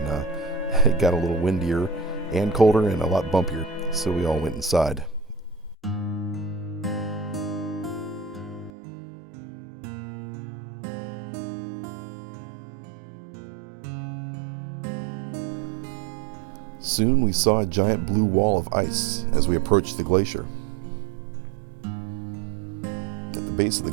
it got a little windier and colder and a lot bumpier, so we all went inside. Soon we saw a giant blue wall of ice as we approached the glacier. At the base of the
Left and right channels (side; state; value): left; drops out; at 8.7 s